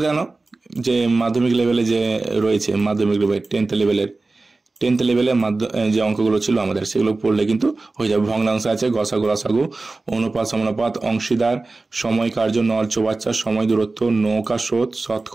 জানো যে মাধ্যমিক লেভেলে যে রয়েছে, মাধ্যমিক লেভেল 10th লেভেলে যে অঙ্কগুলো ছিল আমাদের, সেগুলো পড়লে কিন্তু হয়ে যাবে। ভগ্নাংশ আছে, গসাগু লসাগু, অনুপাত সমানুপাত, অংশীদার, সময় কার্য, নল চৌবাচ্চা, সময় দূরত্ব, নৌকা স্রোত,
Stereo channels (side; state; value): left; quieter; 3.4 dB